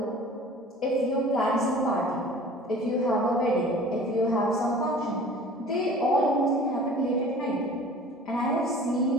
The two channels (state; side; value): normal; both; correlation 0.45